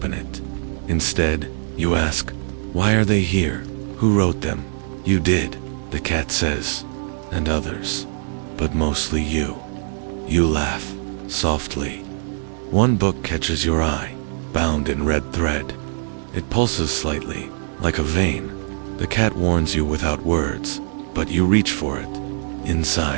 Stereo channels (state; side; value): silent; left; 64 dB below the other